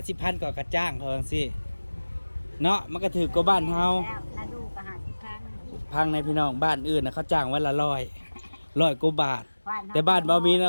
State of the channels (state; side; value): inverted; both; correlation -1.00